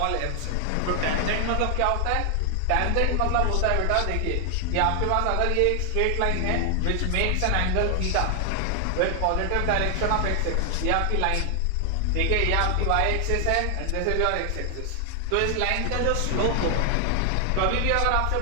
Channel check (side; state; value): both; different; correlation 0.00